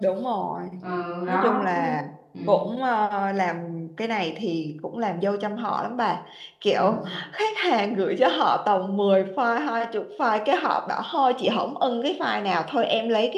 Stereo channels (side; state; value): both; identical; correlation 1.00